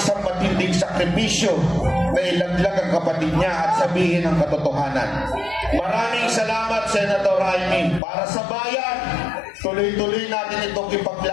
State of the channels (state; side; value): drops out; right; at 8.0 s